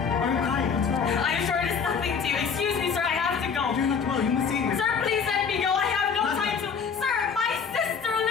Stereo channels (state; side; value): quieter; right; 6.2 dB